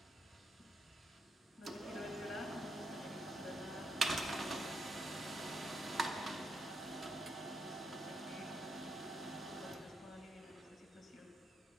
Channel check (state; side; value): normal; both; correlation 0.79